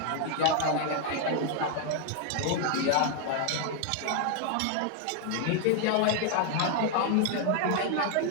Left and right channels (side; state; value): both; different; correlation 0.00